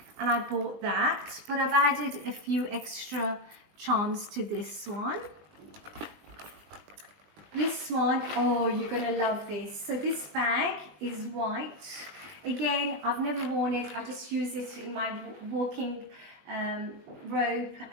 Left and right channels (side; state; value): left; late; 20 ms